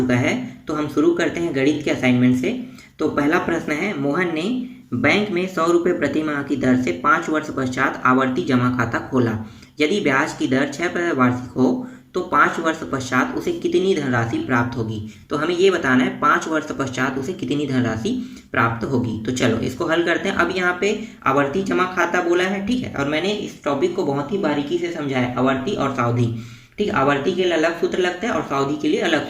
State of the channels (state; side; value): identical; both; correlation 1.00